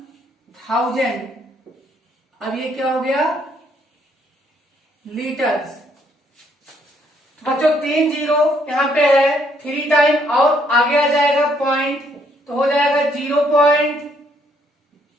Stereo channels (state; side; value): normal; both; correlation 0.69